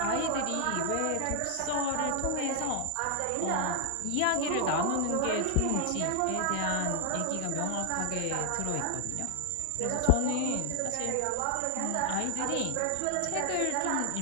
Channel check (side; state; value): both; different; correlation 0.00